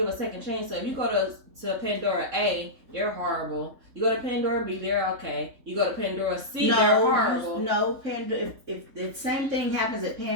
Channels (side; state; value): left; late; 3.6 ms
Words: a second chance. So if you go to Pandora A, they're horrible. You go to Pandora B, they're okay. You go to Pandora C, they're horrible. No, Pandora. If the same thing happens at